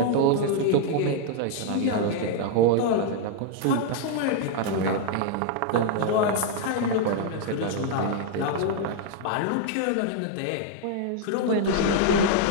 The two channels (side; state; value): both; different; correlation -0.01